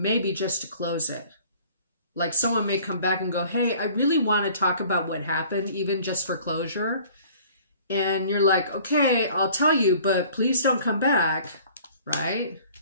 just to close it. Like someone may come back and go, hey, I really want to talk about what happened, even just for closure. And you're like, okay, I'll tell you, but please don't come back, right?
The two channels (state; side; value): inverted; both; correlation -0.51